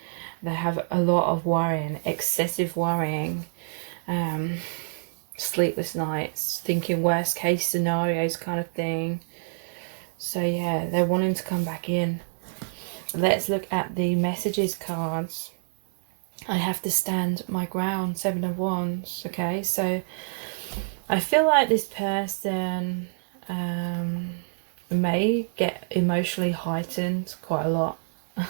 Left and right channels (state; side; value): silent; left; digital silence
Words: They have a lot of worrying, excessive worrying, sleepless nights, thinking worst case scenarios kind of thing. So yeah, they're wanting to come back in. Let's look at the messages cards. I have to stand my ground, 7 of Wands. Okay, so I feel like this person may get emotionally heightened quite a lot.